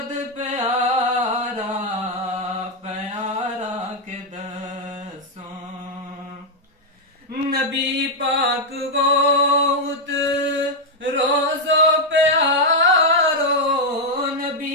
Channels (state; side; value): normal; both; correlation 0.00